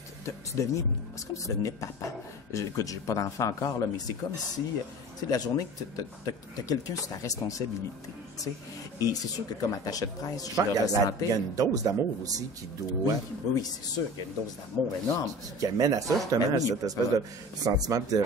C'est comme si tu devenais papa. Écoute, j'ai pas d'enfant encore, là, mais c'est comme si... Tu sais, la journée que t'as quelqu'un sur ta responsabilité, tu sais. Et c'est sûr que comme attaché de presse, je le ressentais. Il y a une dose d'amour aussi qui doit... Oui, c'est sûr qu'il y a une dose d'amour énorme. Qui amène à ça, justement, à cette espèce de sentiment de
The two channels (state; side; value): normal; both; correlation 0.38